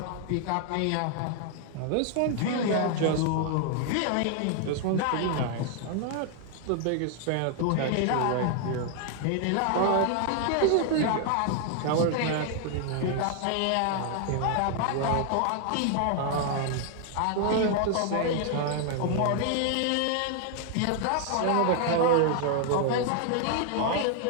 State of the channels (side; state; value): both; different; correlation 0.00